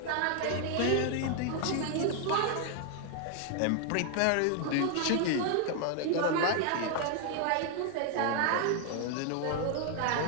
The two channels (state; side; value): different; both; correlation 0.00